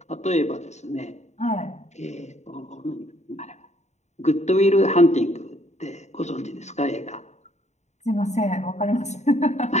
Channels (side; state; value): right; late; 0.33 ms